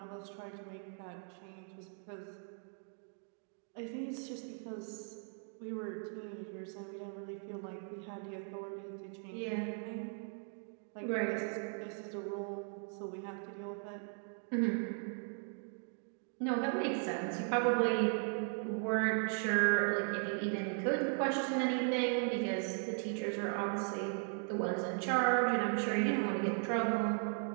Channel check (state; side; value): silent; left; 52 dB below the other